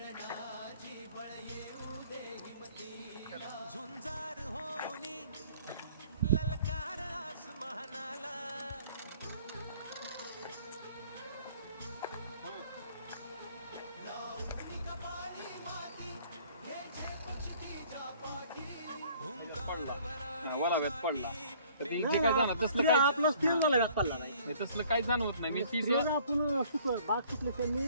वलाव्यात पडला तर ते काय जाणार तसलं काय आपलं स्टील मला पडला नाही. हे तसलं काही जाणवत नाही. मी तीस स्प्रे आपण बाग सुकले त्यांनी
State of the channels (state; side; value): inverted; both; correlation -0.56